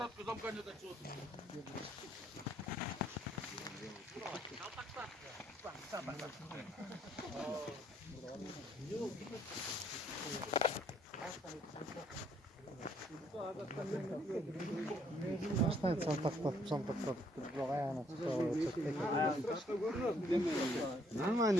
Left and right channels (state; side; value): normal; both; correlation 0.66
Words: kızam kanya da çıktı.